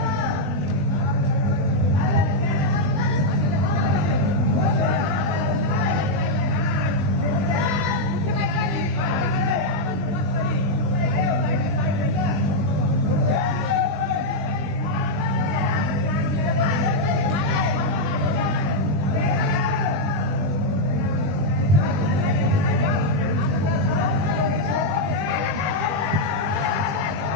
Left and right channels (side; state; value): left; late; 20 ms